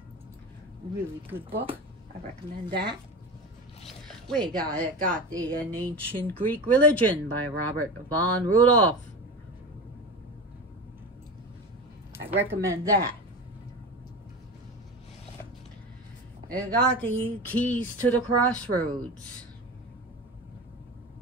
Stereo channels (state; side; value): normal; both; correlation 0.27